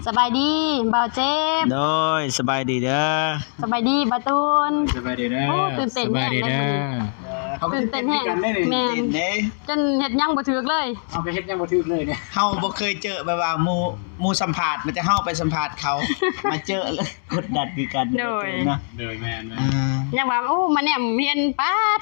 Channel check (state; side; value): silent; right; digital silence